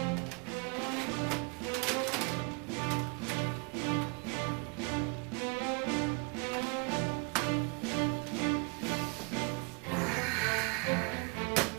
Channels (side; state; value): left; quieter; 32.5 dB